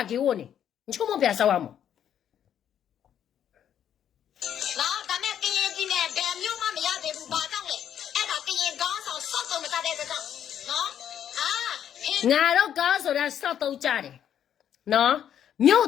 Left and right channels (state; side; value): quieter; right; 9.6 dB